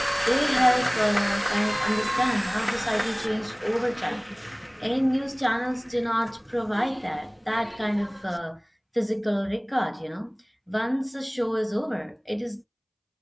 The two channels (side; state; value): both; identical; correlation 1.00